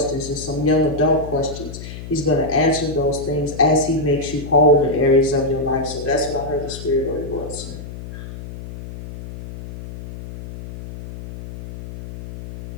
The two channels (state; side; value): noise; left; hum, 11 dB below the sound